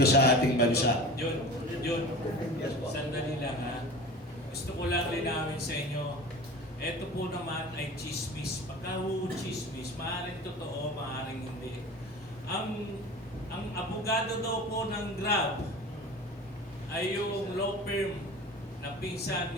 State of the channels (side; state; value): both; normal; correlation 0.36